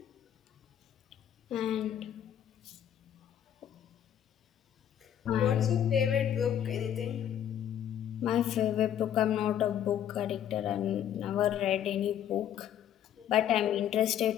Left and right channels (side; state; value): right; quieter; 10.1 dB